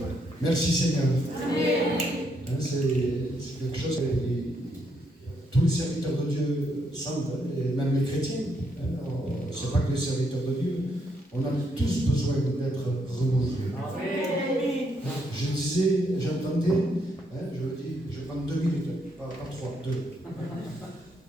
Merci Seigneur. C'est quelque chose que tous les serviteurs de Dieu sentent, et même les chrétiens. Ce n'est pas que les serviteurs de Dieu. On a tous besoin d'être renouvelés. Je disais, j'entendais, je le dis, je prends 2 minutes, pas 3, 2.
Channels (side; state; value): both; normal; correlation 0.75